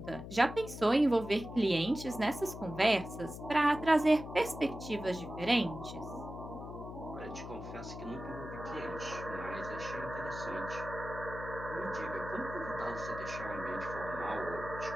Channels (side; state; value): left; noise; hum, 10 dB below the sound